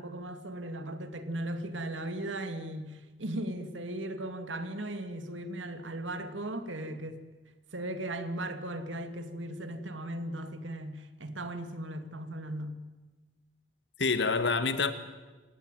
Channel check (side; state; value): both; normal; correlation 0.29